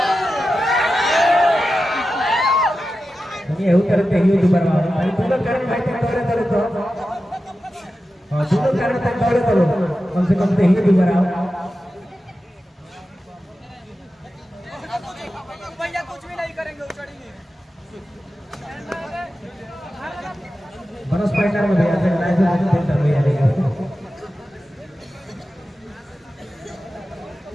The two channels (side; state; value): both; normal; correlation 0.92